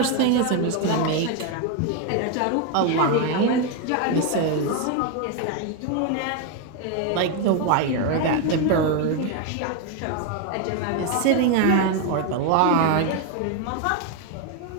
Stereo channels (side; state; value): both; different; correlation 0.01